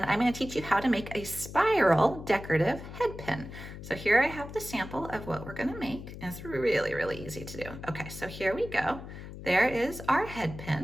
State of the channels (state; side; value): noise; left; hum, 12 dB below the sound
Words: I'm going to teach you how to make a spiral decorative head pin. So here I have the sample of what we're going to make, and it's really easy to do. Okay, so here we go. There is our head